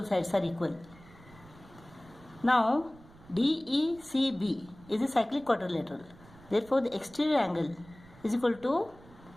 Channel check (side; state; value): right; noise; rumble, 23 dB below the sound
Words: sides are equal. Now DECB is a cyclic quadrilateral. Therefore the exterior angle is equal to